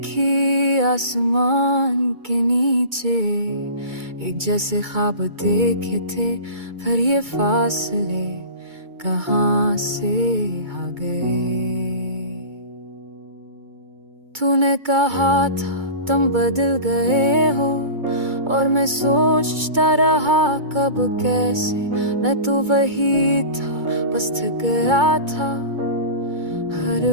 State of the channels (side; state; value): left; late; 2.2 ms